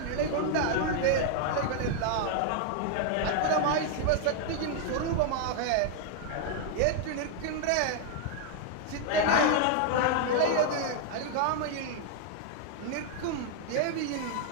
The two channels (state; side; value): different; both; correlation 0.00